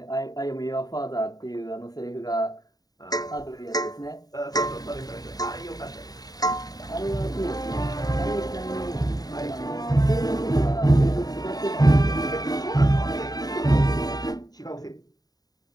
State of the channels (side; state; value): right; late; 0.18 ms